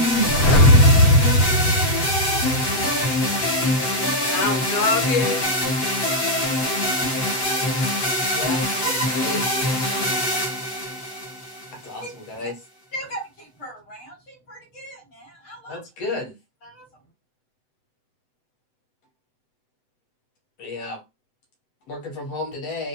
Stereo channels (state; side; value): late; right; 7.9 ms